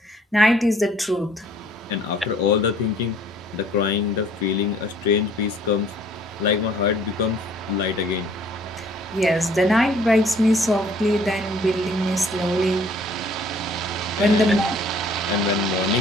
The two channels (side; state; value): both; normal; correlation 0.57